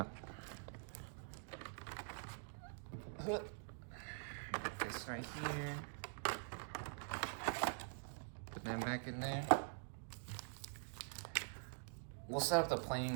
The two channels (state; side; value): silent; left; digital silence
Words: This right here. Put that back in there. We'll set up the playing